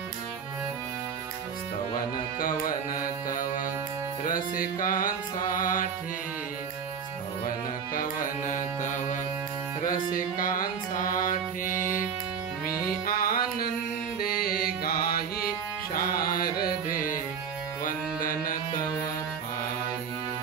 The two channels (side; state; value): left; quieter; 6.8 dB